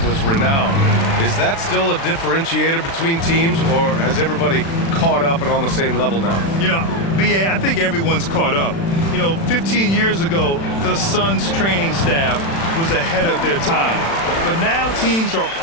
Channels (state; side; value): late; right; 36 ms